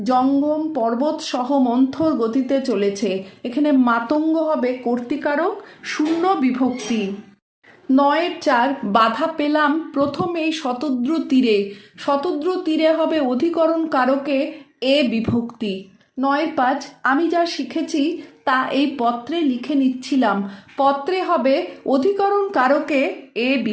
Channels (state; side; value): identical; both; correlation 1.00